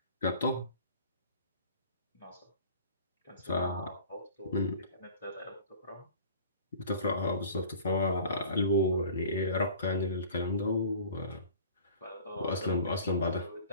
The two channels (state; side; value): inverted; both; correlation -0.45